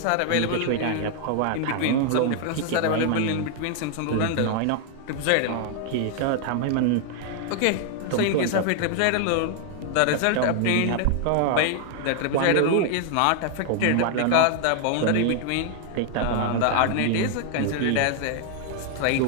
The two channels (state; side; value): different; both; correlation 0.00